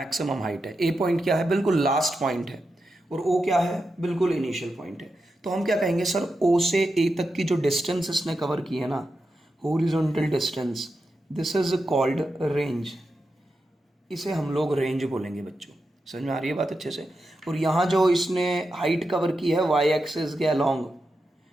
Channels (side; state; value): both; normal; correlation 0.88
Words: हाइट है। ए पॉइंट क्या है, बिल्कुल लास्ट पॉइंट है, और ओ क्या है, बिल्कुल इनिशियल पॉइंट है। तो हम क्या कहेंगे सर, ओ से ए तक की जो डिस्टेंस इसने कवर की है ना, horizontal distance, this is called range. इसे हम लोग रेंज बोलेंगे बच्चों। समझ में आ रही है बात अच्छे से? और यहाँ जो इसने हाइट कवर की है वाई एक्सिस के अलोंग,